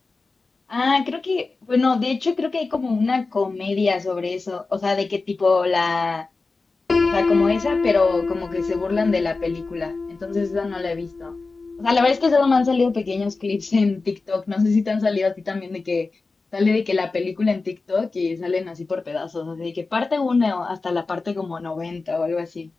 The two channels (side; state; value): right; quieter; 3.8 dB